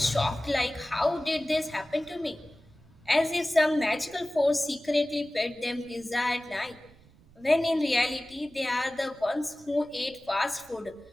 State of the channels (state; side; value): noise; right; rumble, 26 dB below the sound